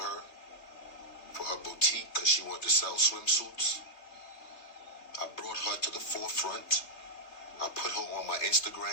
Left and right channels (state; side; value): late; right; 3.2 ms